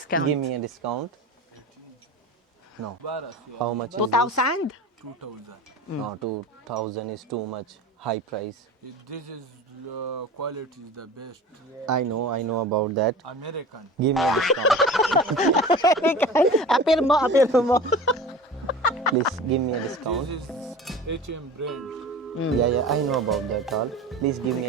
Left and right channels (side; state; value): both; normal; correlation 0.36